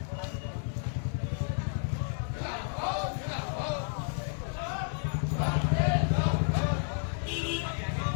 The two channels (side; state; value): right; silent; 57 dB below the other